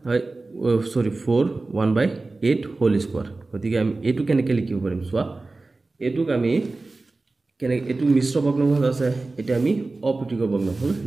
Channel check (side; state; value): left; quieter; 3.4 dB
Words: 1/8 হোল স্কয়াৰ গতিকে আমি এটো কেনেকৈ লিখিব পাৰিম চোৱা এটোক আমি কেনেকৈ এটো মিশ্ৰ ভগ্নাংশ আছে এটা আমি অপ্ৰীতিকৰ ভগ্নাংশ